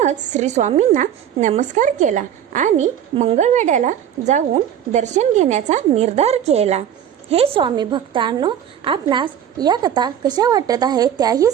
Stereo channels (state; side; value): quieter; left; 9.7 dB